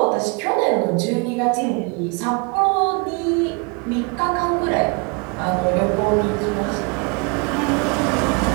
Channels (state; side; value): quieter; left; 31.9 dB